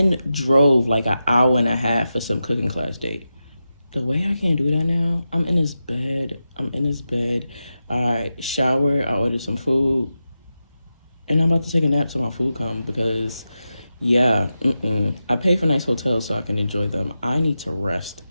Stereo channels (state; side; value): inverted; both; correlation -0.90